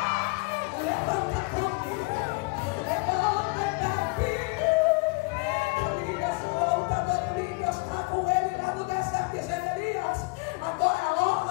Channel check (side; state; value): right; quieter; 28.2 dB